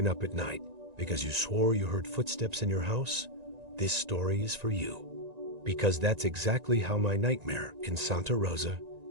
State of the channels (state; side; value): late; left; 1.9 ms